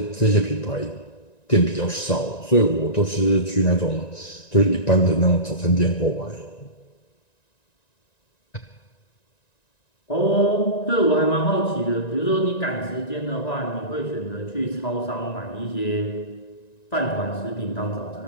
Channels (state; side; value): late; right; 1.9 ms